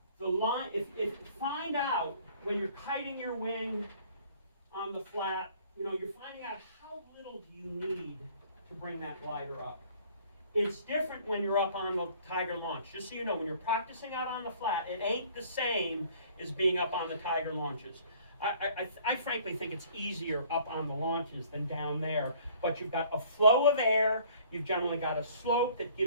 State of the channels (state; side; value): inverted; both; correlation -0.55